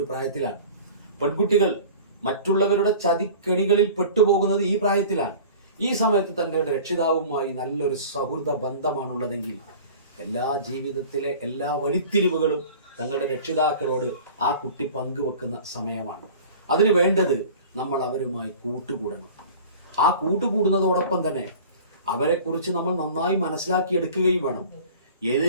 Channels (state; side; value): inverted; both; correlation -0.42